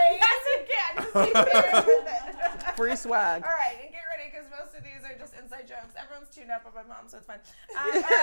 Yes, you can. Just keep sharing with it. Free swag. All right, and get ready because most of these are just inside jokes. Everyone's tuned up by my mom, so it's fine. All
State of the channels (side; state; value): both; inverted; correlation -1.00